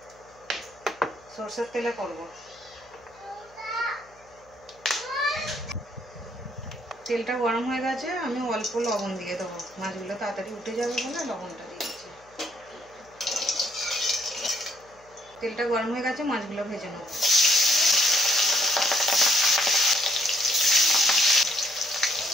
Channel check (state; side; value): noise; left; hum, 28 dB below the sound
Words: সরষের তেলে করব। তেলটা গরম হয়ে গেছে, আমি অল্প লবণ দিয়ে দেব। মাছগুলো তাড়াতাড়ি উঠে যাবে বলে লবণটা দিয়েছি। তেলটা গরম হয়ে গেছে, মাছগুলো ভেজে নেব।